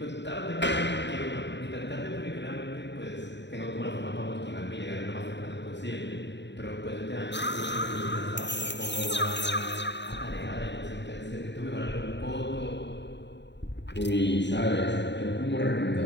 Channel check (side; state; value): right; late; 0.52 ms